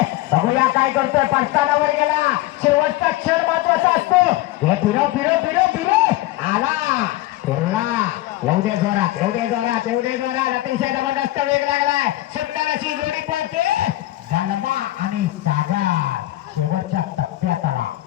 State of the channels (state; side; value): quieter; right; 16.6 dB